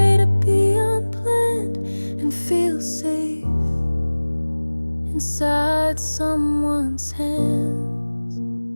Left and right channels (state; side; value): inverted; both; correlation -1.00